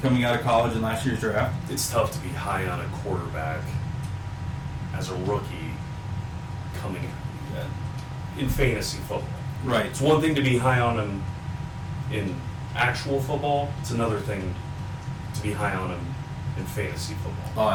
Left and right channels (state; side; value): identical; both; correlation 1.00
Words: out of college in last year's draft. It's tough to be high on a quarterback as a rookie coming in fantasy football. Right. It's one thing to be high on him in actual football. It's another thing to be high on him in fantasy football. Oh,